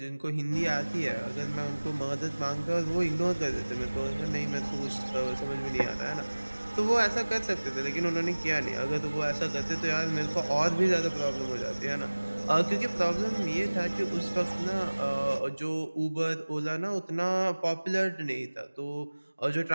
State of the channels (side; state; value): both; inverted; correlation -1.00